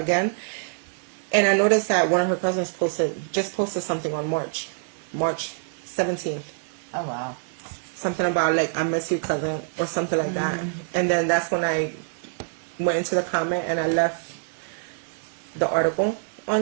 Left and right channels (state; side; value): silent; left; 60 dB below the other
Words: And I noticed that one of her cousins posted something on March 17th. Oh, wow. Something about, I miss you, cousin, or something like that. And then that's when I went into the comment and I left the article